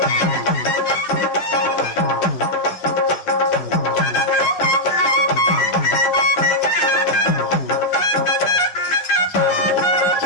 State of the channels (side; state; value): right; late; 11 ms